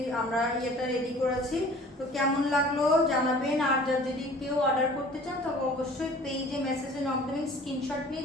আমরা ইয়েটা রেডি করেছি। তো কেমন লাগলো জানাবেন। আর যদি কেউ অর্ডার করতে চান তবে অবশ্যই পেজে মেসেজে নক দেবেন, স্ক্রিনশট নিয়ে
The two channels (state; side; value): normal; both; correlation 0.47